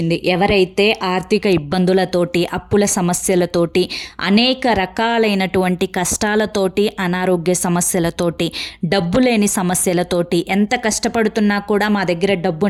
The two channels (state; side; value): identical; both; correlation 1.00